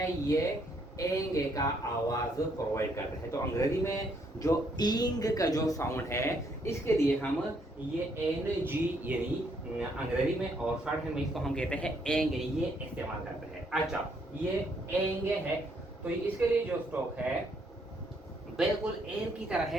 ये एंगे का आवाज प्रोवाइड करता है। तो अंग्रेजी में जो इंग का जो साउंड है, इसके लिए हम ये एन जी यानी अंग्रेजी में और शॉर्टहैंड में इसको हम कहते हैं एंगे, ये इस्तेमाल करते हैं। अच्छा, ये एंगे है, तो इसके लिए जो स्ट्रोक है बिल्कुल एन की तरह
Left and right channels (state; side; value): normal; both; correlation 0.71